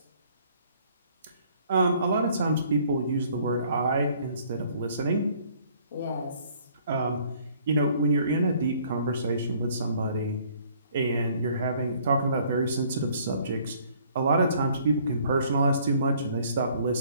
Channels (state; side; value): inverted; both; correlation -0.60